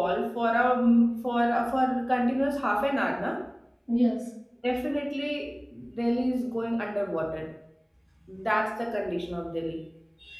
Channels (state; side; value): identical; both; correlation 1.00